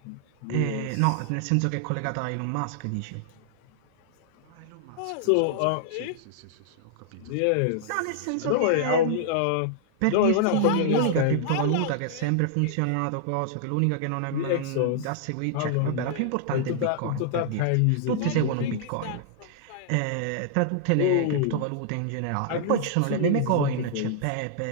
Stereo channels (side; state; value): both; different; correlation -0.01